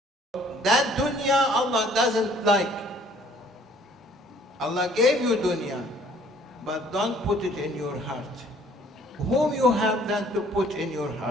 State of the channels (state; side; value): normal; both; correlation 0.57